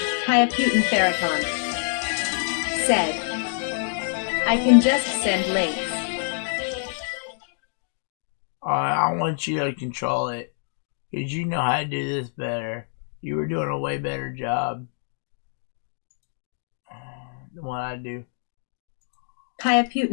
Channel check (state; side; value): silent; right; digital silence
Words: Hayaputin Farrakhan. Said. I can just send links. Alright, I want you to control it. Because you know how to do this better. You were doing a way better job than what I do.